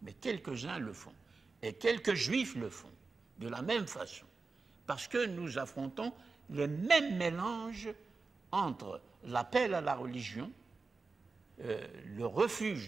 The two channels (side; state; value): left; quieter; 4.1 dB